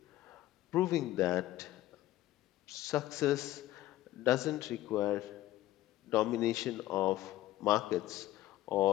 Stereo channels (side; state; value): right; quieter; 15.1 dB